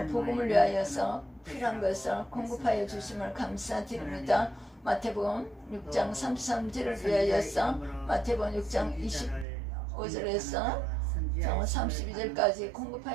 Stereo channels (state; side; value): drops out; left; at 9.5 s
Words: 복음을 위하여서 필요한 것을 공급하여 주심을 감사드립니다. 마태복음 6장 33절을 위하여서 마태복음 6장 25절에서 32절까지